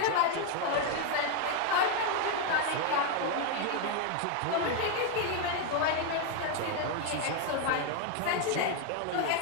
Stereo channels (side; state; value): both; different; correlation 0.01